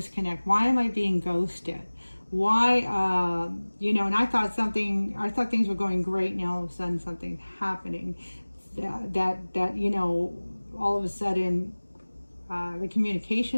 Why am I being ghosted? Why, you know, and I thought things were going great. Now all of a sudden something's happening that you know, all of a sudden the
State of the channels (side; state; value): both; inverted; correlation -1.00